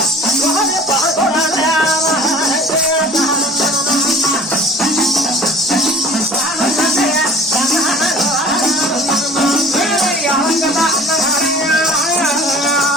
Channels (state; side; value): normal; both; correlation 0.46